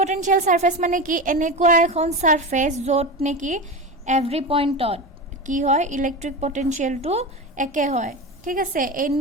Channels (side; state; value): both; normal; correlation 0.23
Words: সাৰফেস মানে কি? এনেকুৱা এখন সাৰফেস য'ত নেকি এভৰি পইণ্টত কি হয়? ইলেক্ট্ৰিক পটেনচিয়েলটো একে হয়, ঠিক আছে।